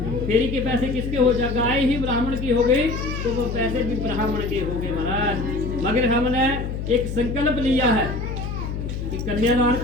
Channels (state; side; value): noise; left; hum, 5 dB below the sound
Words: फेरी के पैसे किसके हो जाए? गाय ही ब्राह्मण की हो गई तो वो पैसे भी ब्राह्मण के हो गए महाराज। मगर हमने एक संकल्प लिया है कि कन्यादान